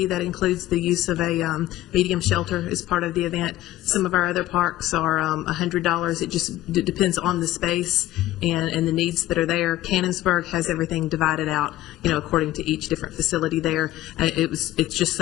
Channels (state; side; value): quieter; right; 15.1 dB